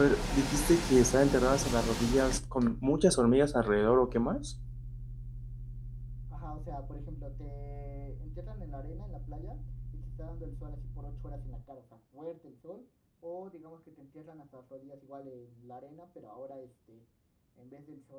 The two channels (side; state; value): both; identical; correlation 1.00